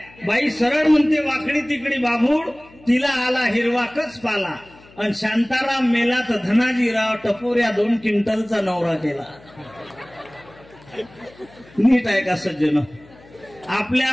बाई सरळ म्हणते, वाकडी तिकडी बाभूड, तिला आला हिरवाकच पाला. आणि शांताराम मेला तर धनाजीराव टपोऱ्या 2 क्विंटलचा नवरा केला. नीट आहे का सज्जन?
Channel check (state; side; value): noise; left; hum, 25 dB below the sound